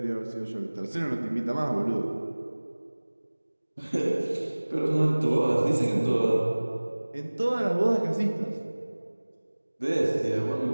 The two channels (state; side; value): inverted; both; correlation -1.00